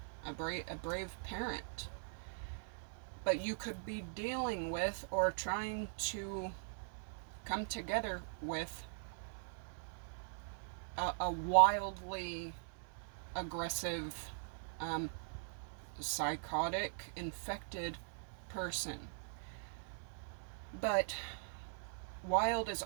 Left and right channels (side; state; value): left; silent; digital silence